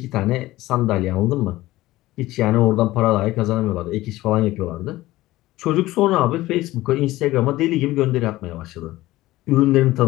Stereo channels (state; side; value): quieter; right; 17.3 dB